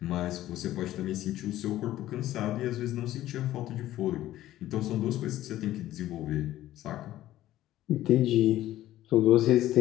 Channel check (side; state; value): right; quieter; 14.2 dB